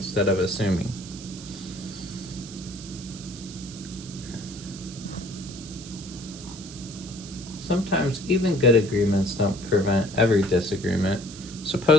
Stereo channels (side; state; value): right; noise; hiss, 15 dB below the sound